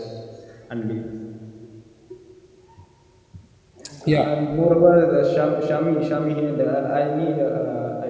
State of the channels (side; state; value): both; identical; correlation 1.00